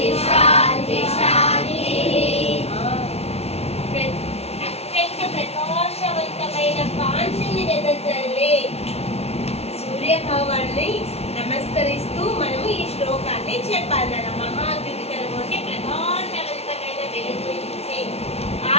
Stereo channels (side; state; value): right; late; 0.30 ms